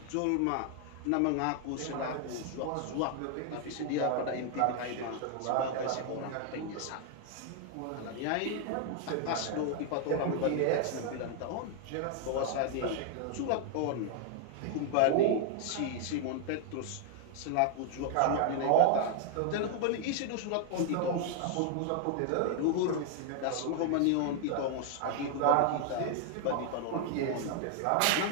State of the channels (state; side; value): different; both; correlation 0.00